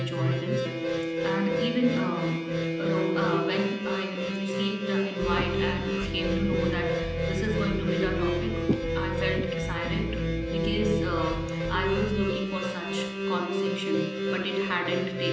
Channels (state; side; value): identical; both; correlation 1.00